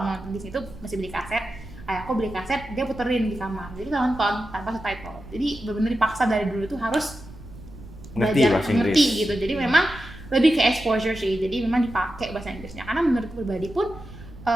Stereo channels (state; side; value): noise; right; rumble, 17 dB below the sound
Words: mau nonton Disney itu masih beli kaset. Ayahku beli kaset, dia puterin di kamar. Jadi kita nonton tanpa subtitle. Jadi benar-benar dipaksa dari dulu tuh harus belajar ngerti gitu. Jadi memang lebih ke exposure sih. Jadi memang dipakai bahasa Inggrisnya. Karena menurut pribadi pun